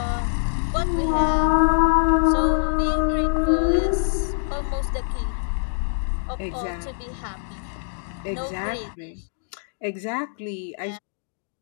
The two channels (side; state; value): right; silent; 63 dB below the other